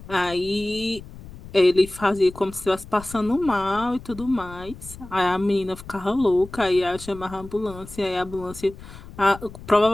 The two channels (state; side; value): noise; left; rumble, 16 dB below the sound